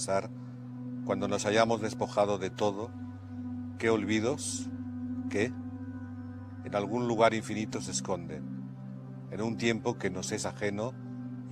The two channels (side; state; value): both; identical; correlation 1.00